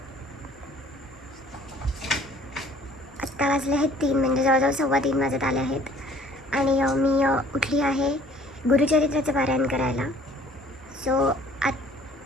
3 म्हणजे जवळजवळ 3:15 वाजत आले आहेत. आणि मी उठली आहे गुरुचरित्राचं पारायण करायला. सो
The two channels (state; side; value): normal; both; correlation 0.55